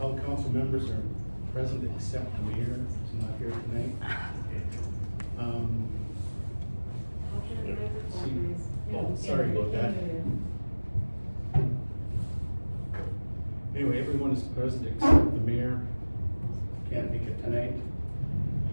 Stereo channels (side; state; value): both; inverted; correlation -1.00